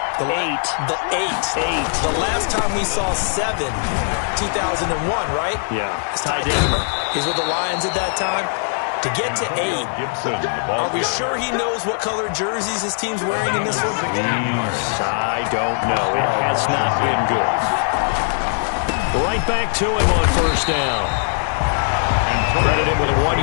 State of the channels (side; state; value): right; silent; digital silence